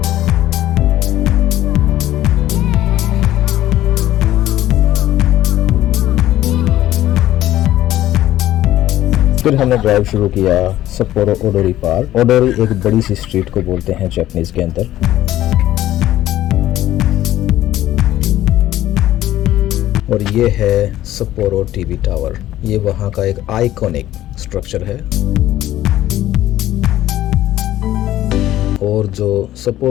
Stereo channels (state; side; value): quieter; right; 13.8 dB